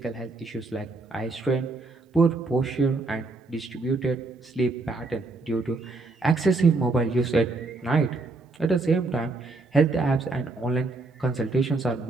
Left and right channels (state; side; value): quieter; left; 3.4 dB